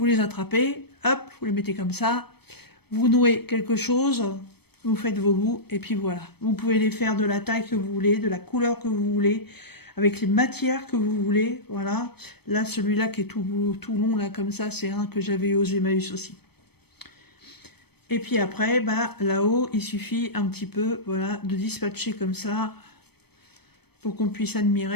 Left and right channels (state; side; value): late; right; 0.97 ms